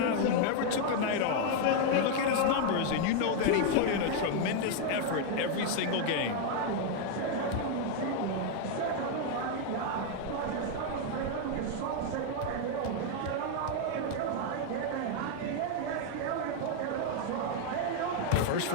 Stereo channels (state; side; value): different; both; correlation 0.00